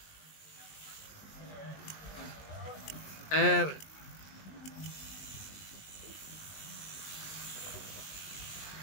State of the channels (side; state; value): right; late; 20 ms